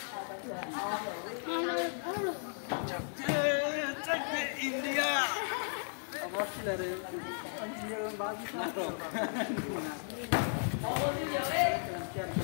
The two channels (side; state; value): right; silent; digital silence